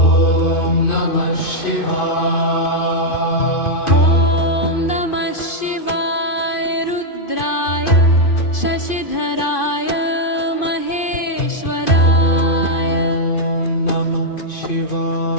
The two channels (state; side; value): late; right; 2.5 ms